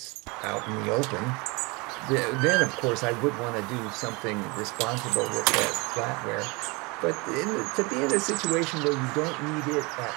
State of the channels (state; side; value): quieter; left; 26.9 dB